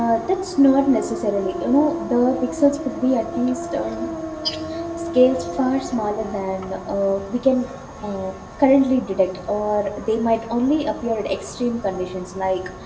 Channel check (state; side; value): identical; both; correlation 1.00